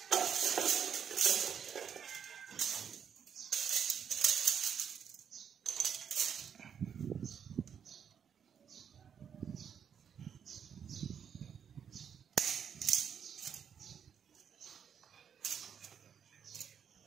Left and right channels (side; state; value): left; quieter; 7.8 dB